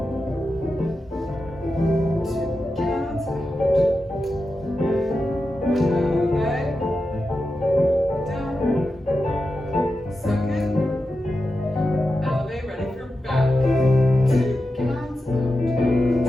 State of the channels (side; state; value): both; normal; correlation 0.90